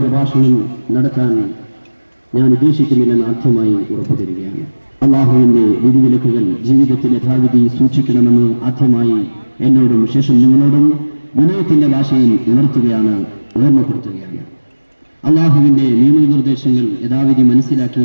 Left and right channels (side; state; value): both; inverted; correlation -1.00